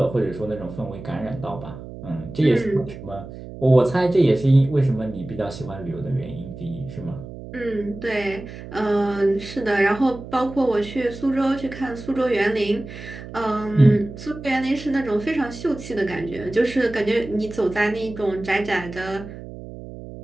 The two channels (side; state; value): right; noise; hum, 13 dB below the sound